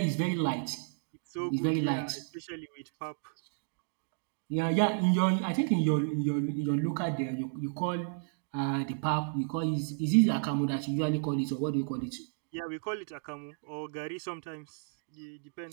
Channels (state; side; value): silent; left; digital silence